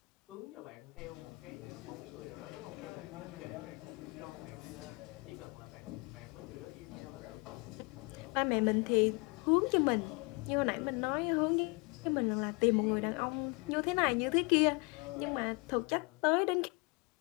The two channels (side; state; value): right; quieter; 29.7 dB